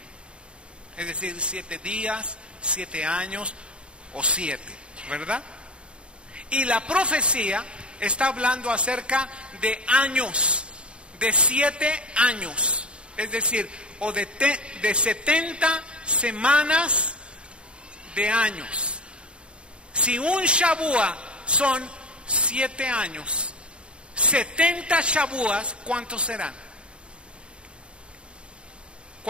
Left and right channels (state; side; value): late; left; 0.055 ms